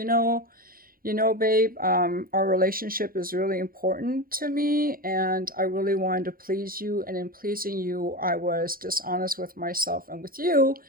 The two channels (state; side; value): late; left; 0.42 ms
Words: our relationship is really important to me, and I really wanted to please you. And in pleasing you, I was dishonest with myself and with you.